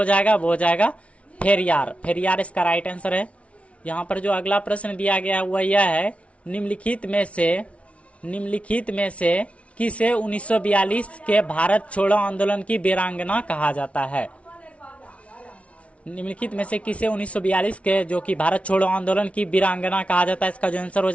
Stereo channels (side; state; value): right; late; 0.063 ms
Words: जाएगा वो हो जाएगा पेरियार। पेरियार इसका राइट आंसर है। यहाँ पर जो अगला प्रश्न दिया गया हुआ यह है, निम्नलिखित में से किसे 1942 के भारत छोड़ो आंदोलन की वीरांगना कहा जाता है? निम्नलिखित में से किसे 1942 के जो कि भारत छोड़ो आंदोलन की वीरांगना कहा जाता है? इसका जो आंसर हो